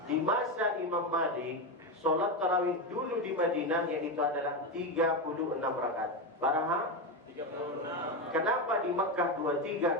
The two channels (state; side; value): normal; both; correlation 0.13